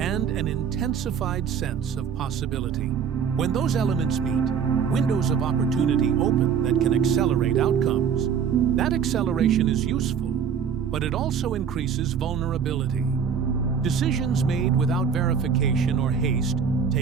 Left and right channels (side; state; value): left; quieter; 7.1 dB